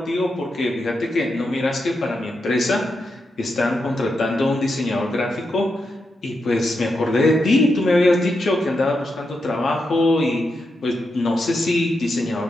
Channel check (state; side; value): normal; both; correlation 0.86